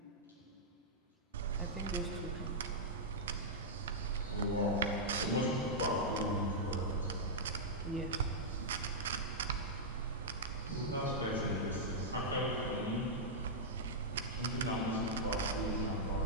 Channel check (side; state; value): both; normal; correlation -0.09